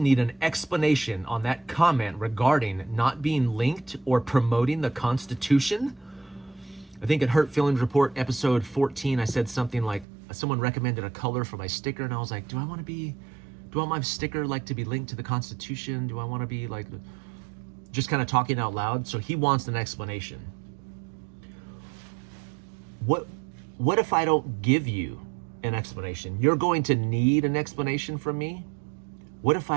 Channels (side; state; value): left; drops out; at 10.1 s